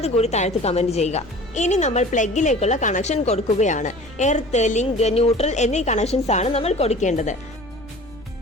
താഴത്ത് കമന്റ് ചെയ്യുക. ഇനി നമ്മൾ പ്ലഗിലേക്കുള്ള കണക്ഷൻ കൊടുക്കുകയാണ്. എർത്ത്, ലിങ്ക്, ന്യൂട്രൽ എന്നീ കണക്ഷൻസ് ആണ് നമ്മൾ കൊടുക്കേണ്ടത്.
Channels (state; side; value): noise; left; rumble, 22 dB below the sound